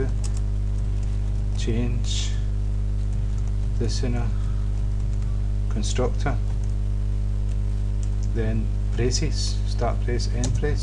change listener, constructor, then braces, start brace, end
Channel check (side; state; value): both; identical; correlation 1.00